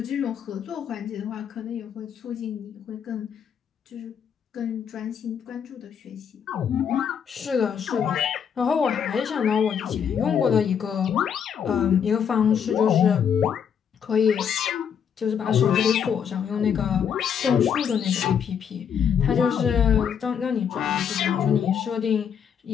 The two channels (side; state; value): right; quieter; 7.8 dB